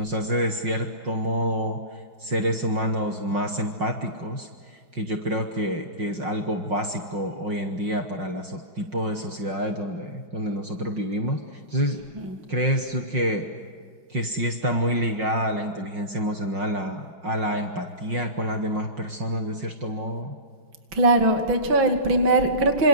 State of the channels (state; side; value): late; left; 5.5 ms